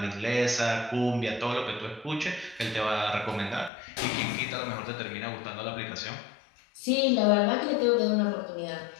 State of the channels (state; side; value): drops out; right; at 3.7 s